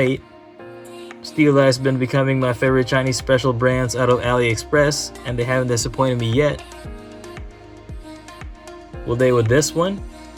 Steeldive has been becoming my favorite Chinese special brands out of AliExpress, and they haven't disappointed me yet. Will they with this one?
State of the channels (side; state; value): both; identical; correlation 1.00